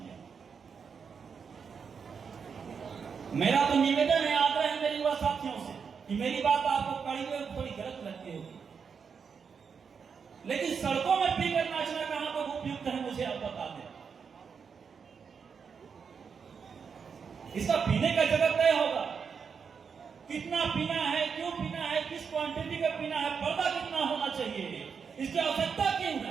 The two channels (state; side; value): quieter; left; 6.2 dB